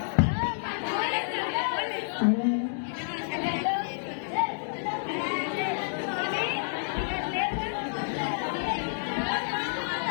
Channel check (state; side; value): silent; right; digital silence